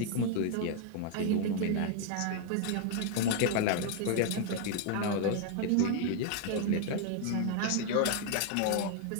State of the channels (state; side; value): different; both; correlation 0.00